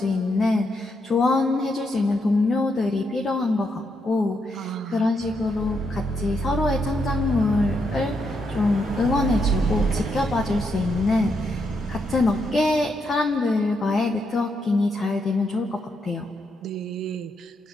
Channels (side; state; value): both; normal; correlation 0.79